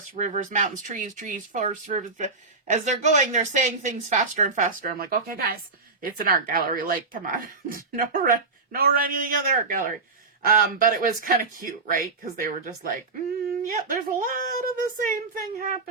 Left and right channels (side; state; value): left; quieter; 4.0 dB